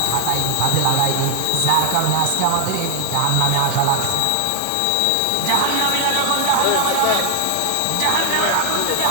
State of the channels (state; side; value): different; both; correlation 0.00